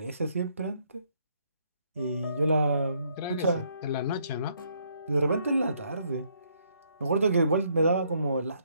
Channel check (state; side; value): inverted; both; correlation -0.70